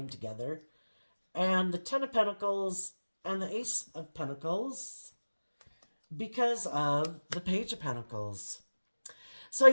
together. And the Ten of Pentacles and the Ace of Pentacles because of the Page of Pentacles. So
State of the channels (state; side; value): inverted; both; correlation -1.00